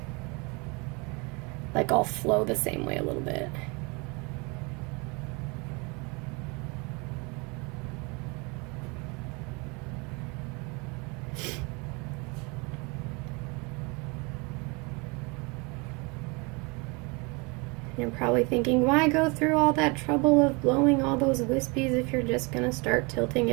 like all flow the same way a little bit. You're probably thinking, why go through all that trouble of blowing all those wispies if you're just gonna start tilting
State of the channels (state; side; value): quieter; left; 29.2 dB